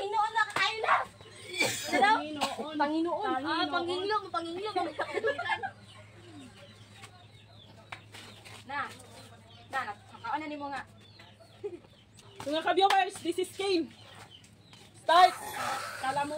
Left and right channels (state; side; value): identical; both; correlation 1.00